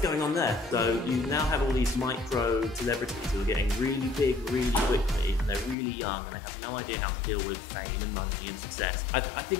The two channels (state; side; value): drops out; right; at 5.8 s